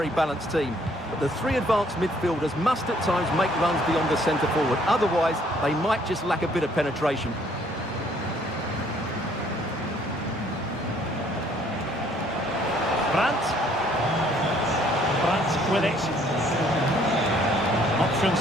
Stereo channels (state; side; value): normal; both; correlation 0.62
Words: balanced team. But the three advanced midfielders must at times make runs beyond the centre forward. Otherwise, they might just lack a bit of penetration. Brandt with it.